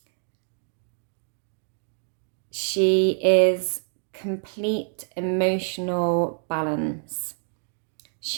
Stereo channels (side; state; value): left; silent; 60 dB below the other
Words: She is complete emotional balance.